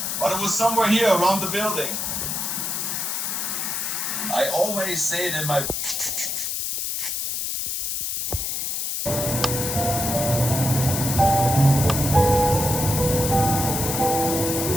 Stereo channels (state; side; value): noise; left; hiss, 2 dB below the sound